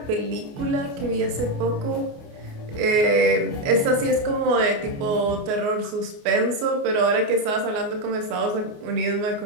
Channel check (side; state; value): left; late; 28 ms